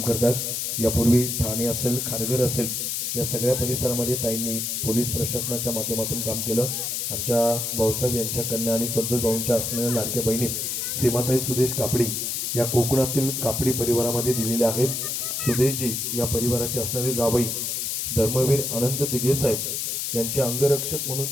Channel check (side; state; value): left; noise; hiss, 2 dB below the sound